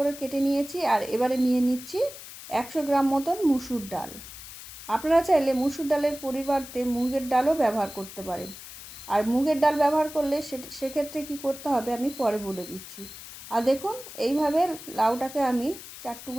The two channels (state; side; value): noise; left; hiss, 14 dB below the sound